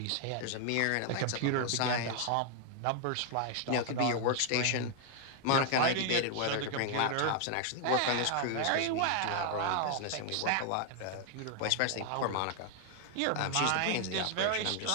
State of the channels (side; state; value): both; different; correlation 0.00